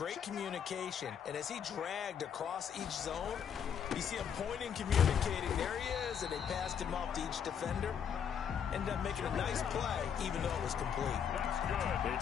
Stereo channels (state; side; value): quieter; right; 7.9 dB